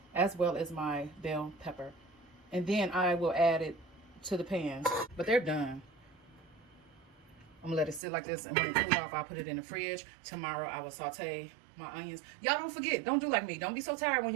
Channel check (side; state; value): left; drops out; at 8.0 s